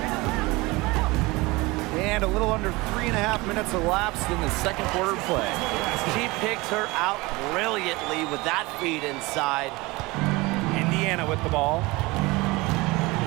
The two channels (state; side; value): quieter; left; 22.7 dB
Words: And a little under 3.5 minutes elapsed in the second quarter play. She picked her out brilliantly with that feed inside. Indiana with the ball.